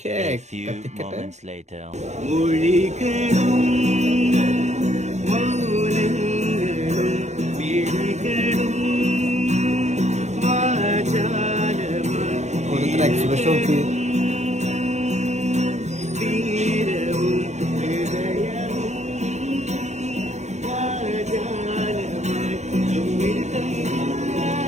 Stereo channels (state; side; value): late; left; 0.33 ms